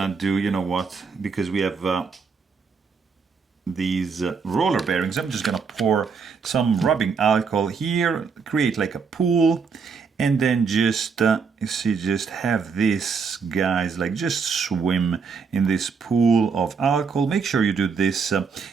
do, because we have these roller bearings, I'm just gonna pour some rubbing alcohol here, create like a pool, and then just you see, just have this, guys, like just swim in this pool of alcohol. Make sure you do this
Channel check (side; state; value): left; quieter; 5.5 dB